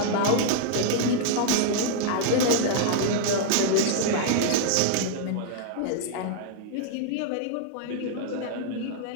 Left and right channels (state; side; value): different; both; correlation -0.01